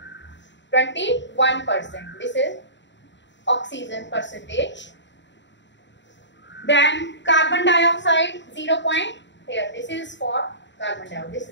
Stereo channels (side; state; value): right; late; 0.52 ms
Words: 21%. This is oxygen percentage. Then carbon dioxide 0. Here this is for carbon dioxide. This